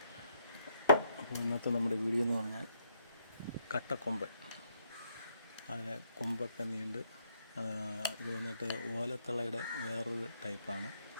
അപ്പോൾ ഇന്നത്തെ നമ്മുടെ വീഡിയോ എന്ന് പറഞ്ഞാൽ കട്ടക്കൊമ്പൻ. അതിനെ കൊമ്പൊക്കെ നീണ്ട് ഇത് വന്നിട്ട് ഓലത്തളയുടെ വേറൊരു ടൈപ്പാണ്.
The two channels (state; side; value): inverted; both; correlation -0.74